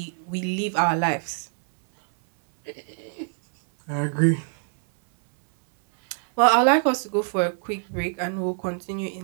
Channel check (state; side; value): silent; left; 62 dB below the other